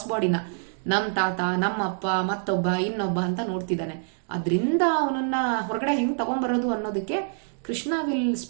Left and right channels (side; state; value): left; silent; digital silence